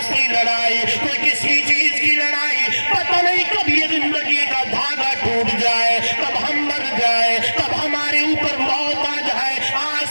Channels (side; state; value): both; inverted; correlation -1.00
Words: کی لڑائی, کوئی کسی چیز کی لڑائی, پتہ نہیں کب یہ زندگی کا دھاگا ٹوٹ جائے, کب ہم مر جائے, کب ہمارے اوپر موت آ جائے. آج